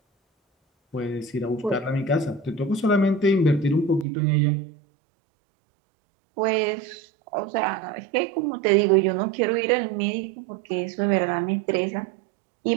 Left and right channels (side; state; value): left; drops out; at 4.0 s